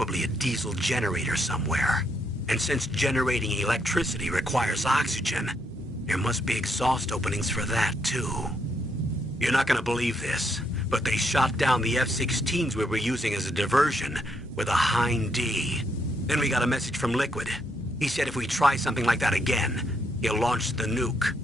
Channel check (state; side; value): normal; both; correlation 0.75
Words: a diesel generator somewhere. And since generating electricity requires oxygen, there must be exhaust openings for that too. You're not gonna believe this, but they shot down the F-16s we were using as a diversion with a Hind D. Then we got a message from Liquid. He said if we try something like that again, he'll launch the nuke.